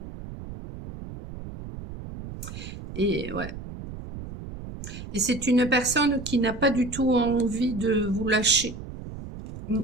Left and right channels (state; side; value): noise; right; rumble, 11 dB below the sound